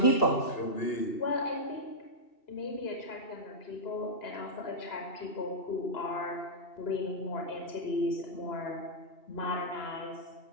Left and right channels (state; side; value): late; right; 2.9 ms